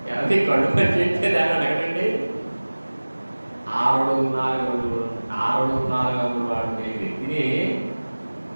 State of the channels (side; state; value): both; inverted; correlation -1.00